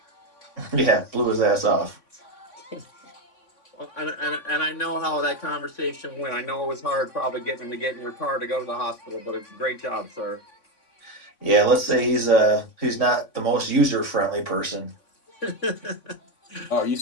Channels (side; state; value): right; late; 3.5 ms